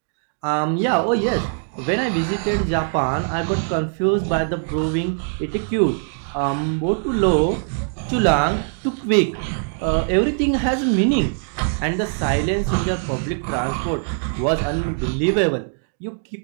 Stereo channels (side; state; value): left; silent; digital silence